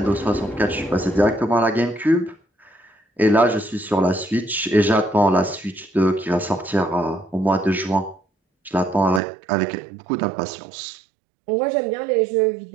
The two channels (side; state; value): left; drops out; at 9.2 s